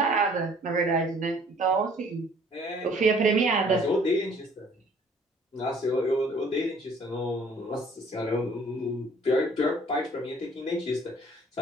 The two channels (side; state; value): both; normal; correlation 0.56